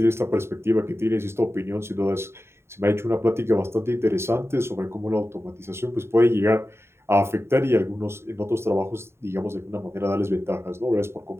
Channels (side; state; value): left; late; 0.12 ms